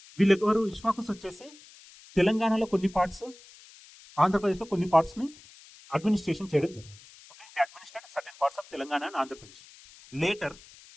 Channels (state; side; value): noise; left; hiss, 22 dB below the sound